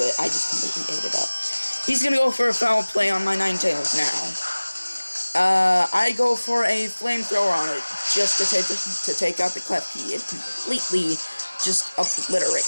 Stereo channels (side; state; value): both; inverted; correlation -1.00